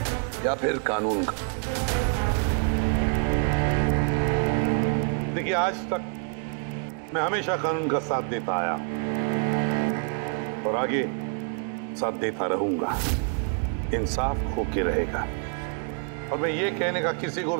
या फिर कानून का? देखिए, आज तक मैं हमेशा कानून का साथ देता आया और आगे साथ देता रहूंगा। इंसाफ होके रहेगा और मैं ये कहने का किसी को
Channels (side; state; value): left; quieter; 36.8 dB